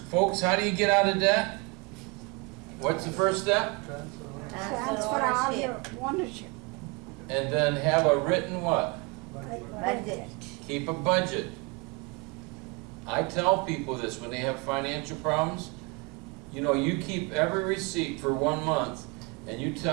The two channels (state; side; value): quieter; left; 28.8 dB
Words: folks, how do you get out of debt? What's the first step? Transfer all your ownership. And then have a written what? Budget. Keep a budget. I tell people this when they have financial problems. You know, you keep every receipt for 1 month and you